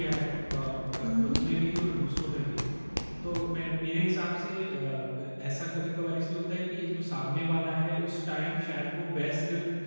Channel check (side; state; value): both; inverted; correlation -1.00